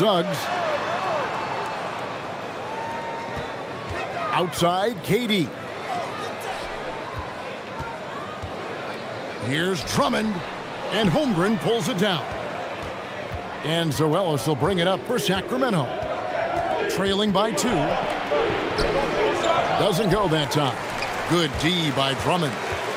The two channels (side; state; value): both; identical; correlation 1.00